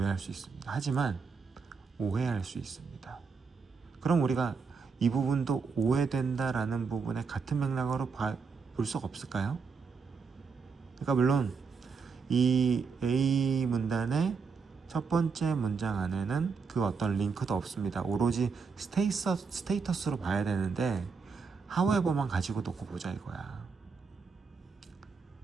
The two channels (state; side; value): quieter; left; 5.3 dB